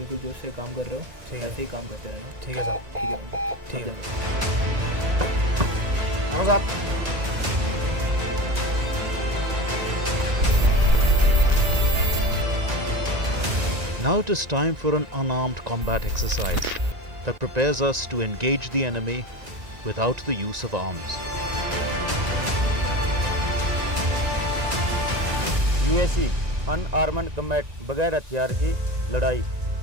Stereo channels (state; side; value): late; left; 1.9 ms